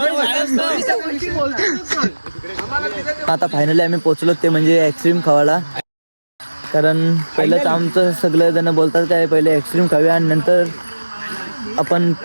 आता फायनली आम्ही पोहोचलो ते म्हणजे ॲक्सट्रीम खावाला. कारण पहिलंच आमचं सगळे जण बोलतात काय पहिले ॲक्सट्रीम खाऊया आणि नंतर आपण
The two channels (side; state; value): both; inverted; correlation -1.00